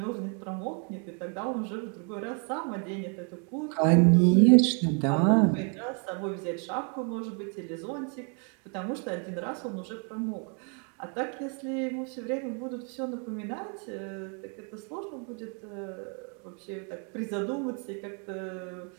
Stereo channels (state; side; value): quieter; left; 39.1 dB